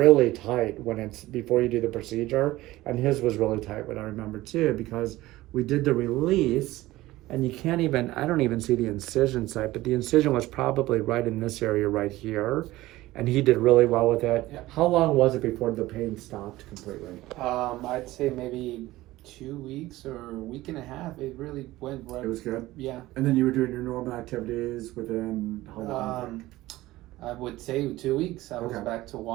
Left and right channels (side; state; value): left; quieter; 17.5 dB